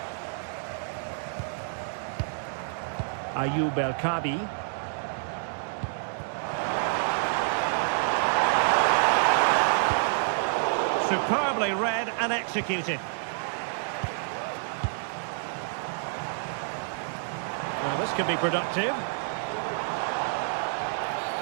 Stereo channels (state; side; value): silent; left; digital silence